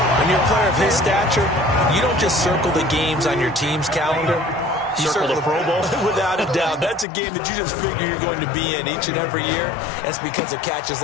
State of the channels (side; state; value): right; drops out; at 7.1 s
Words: When you're a player of his stature, you don't just circle the games on your team's calendar. You circle the Pro Bowl? Without a doubt. That's a game that you just figure you're going to be in each and every year. That's because of catches